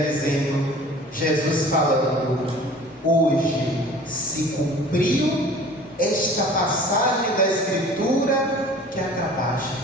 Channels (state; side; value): normal; both; correlation 0.45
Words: dizendo, Jesus falando: hoje se cumpriu esta passagem da Escritura que acabaste